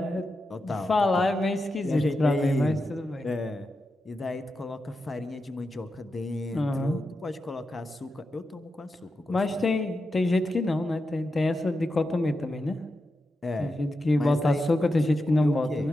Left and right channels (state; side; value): normal; both; correlation 0.89